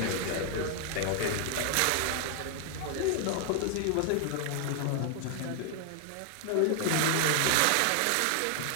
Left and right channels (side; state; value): both; different; correlation 0.00